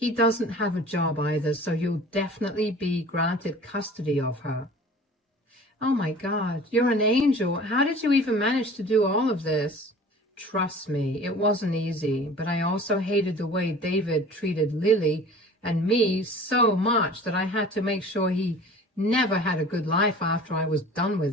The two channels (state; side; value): normal; both; correlation 0.43